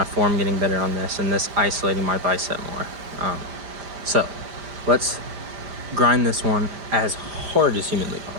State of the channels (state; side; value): late; left; 5.1 ms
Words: form getting better on this, and this isolating my bicep more. So let's grind this one as hard as humanly